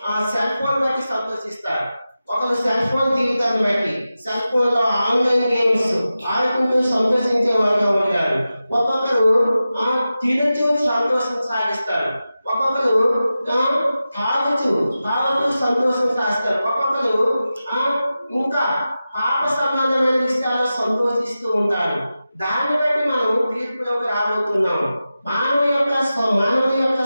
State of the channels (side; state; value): both; inverted; correlation -0.93